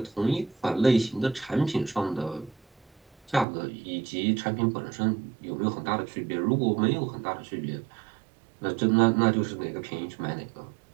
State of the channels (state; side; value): drops out; left; at 3.5 s